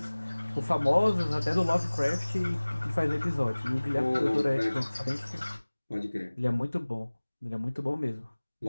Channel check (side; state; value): both; inverted; correlation -1.00